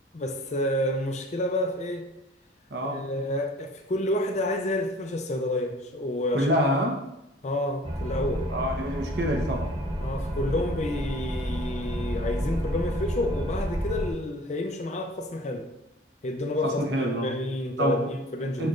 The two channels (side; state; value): both; normal; correlation 0.48